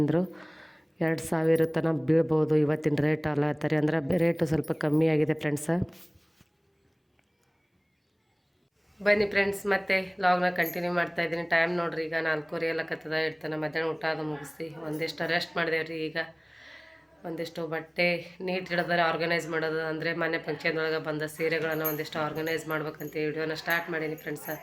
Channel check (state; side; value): identical; both; correlation 1.00